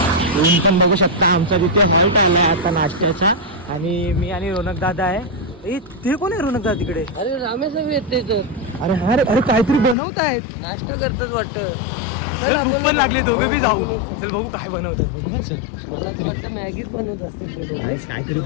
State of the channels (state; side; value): drops out; right; at 10.0 s